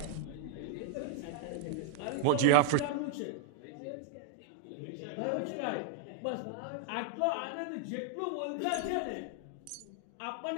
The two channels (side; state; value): both; different; correlation 0.00